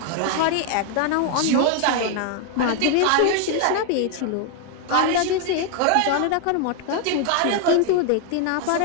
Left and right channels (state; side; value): different; both; correlation 0.01